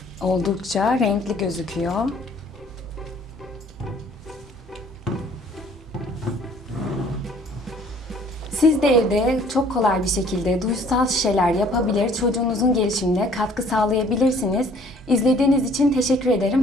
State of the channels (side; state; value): both; normal; correlation 0.56